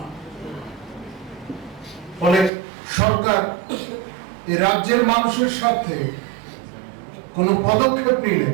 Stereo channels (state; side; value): drops out; left; at 2.5 s